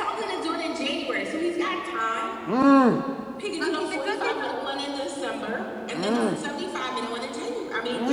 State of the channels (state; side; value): identical; both; correlation 1.00